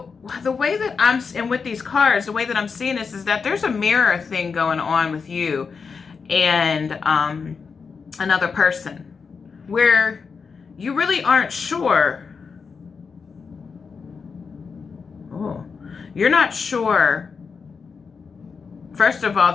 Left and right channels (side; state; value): right; quieter; 5.4 dB